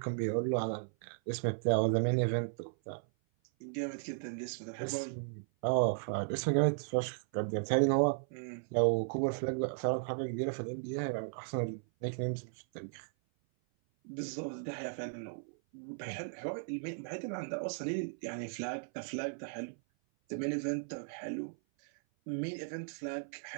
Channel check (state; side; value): silent; left; 54 dB below the other